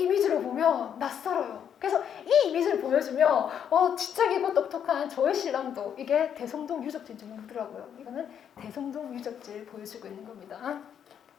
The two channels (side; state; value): right; quieter; 8.6 dB